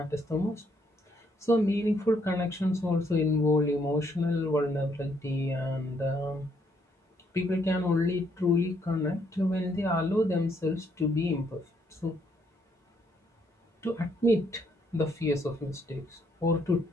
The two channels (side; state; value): both; normal; correlation 0.71